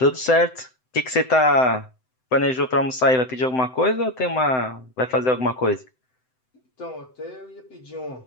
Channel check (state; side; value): late; right; 7.8 ms